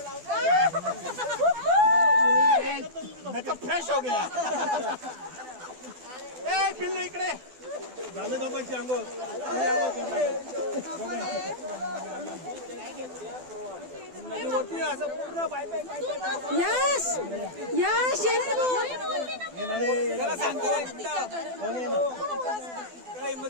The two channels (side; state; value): left; late; 12 ms